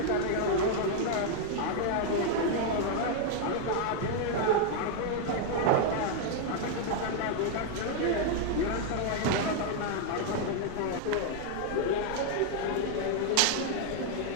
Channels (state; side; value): different; both; correlation 0.00